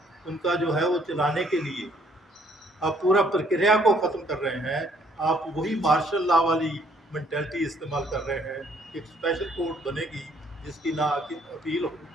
उनका जो है वो चलाने के लिए आप पूरा प्रक्रिया को ख़त्म कर रहे हैं, आप वही मार्शल लॉ वाली मेंटेलिटी इस्तेमाल कर रहे हैं। एक स्पेशल कोर्ट बनेगी जिसकी ना अपील होगी,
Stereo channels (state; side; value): normal; both; correlation 0.64